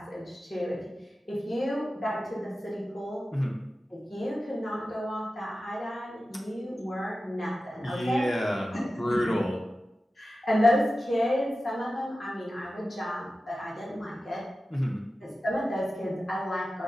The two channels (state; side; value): normal; both; correlation 0.94